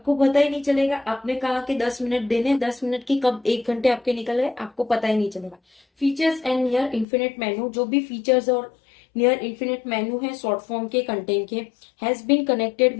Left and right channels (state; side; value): drops out; right; at 7.1 s